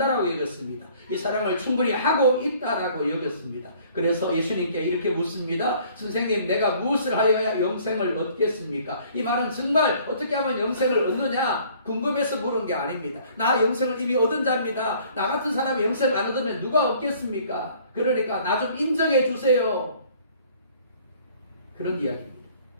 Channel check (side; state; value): both; inverted; correlation -0.56